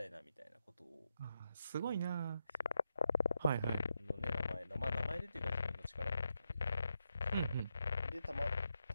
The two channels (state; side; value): inverted; both; correlation -0.85